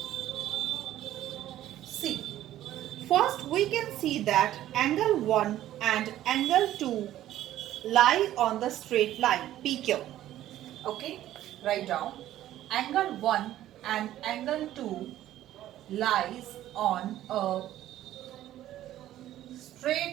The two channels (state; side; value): quieter; left; 13.2 dB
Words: see. First we can see that angle 1 and angle 2 lie on the straight line PQ. Okay? Write down. Angle 1 and angle 2 lies on a